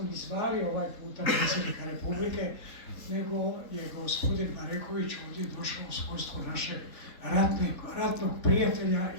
ni zvali ovaj puta predsjednika Republike, nego je gospodin Mareković ovdje došao u svojstvu našeg ratnog prijatelja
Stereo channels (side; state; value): right; late; 3.9 ms